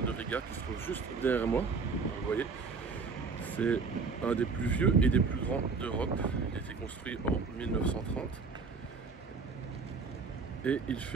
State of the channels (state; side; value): quieter; left; 4.8 dB